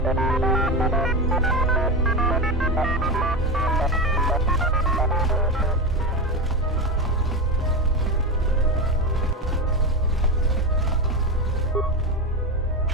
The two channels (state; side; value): normal; both; correlation 0.19